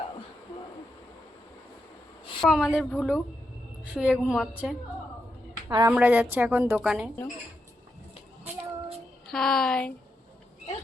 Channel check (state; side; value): normal; both; correlation 0.84